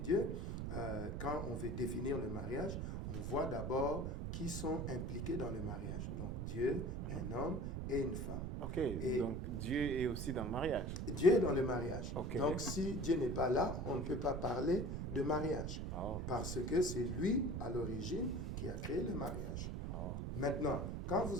quand on veut définir le mariage, on voit d'abord qui sont impliqués dans le mariage. Donc, Dieu, un homme et une femme. Ok, Et donc Dieu est aussi dans le mariage. Dieu est dans le mariage. Ok. Donc, si Dieu n'est pas là, on ne peut pas parler de mariage. Oh. Parce que c'est lui, à l'origine, qui a créé le mariage. Oh. Maintenant, quand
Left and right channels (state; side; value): noise; right; rumble, 3 dB below the sound